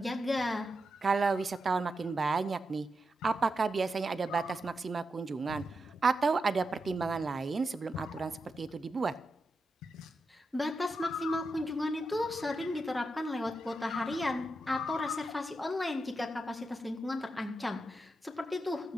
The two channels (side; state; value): both; normal; correlation 0.87